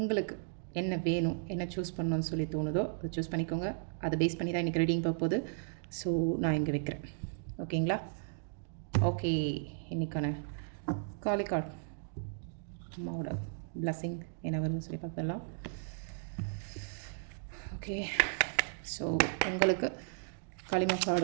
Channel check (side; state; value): left; silent; digital silence